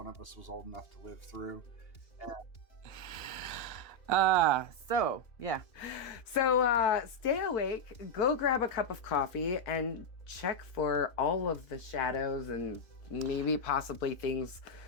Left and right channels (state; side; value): late; right; 2.7 ms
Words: of us was old enough to live through. So stay awake, go grab a cup of coffee, and check for all of the shadows and maybe possibly things